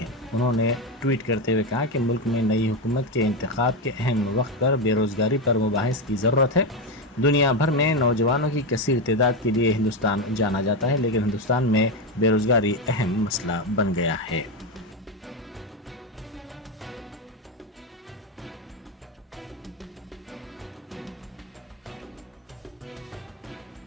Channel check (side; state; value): both; normal; correlation 0.12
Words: उन्होंने ट्वीट करते हुए कहा कि मुल्क में नई हुकूमत के इंतखाब के अहम वक्त पर बेरोजगारी पर मुबाहिस की ज़रूरत है। दुनिया भर में नौजवानों की कसीर तादाद के लिए हिंदुस्तान जाना जाता है, लेकिन हिंदुस्तान में बेरोजगारी अहम मसला बन गया है।